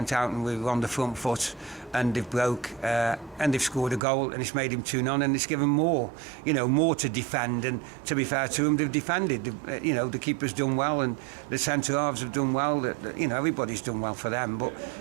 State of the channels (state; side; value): drops out; left; at 4.0 s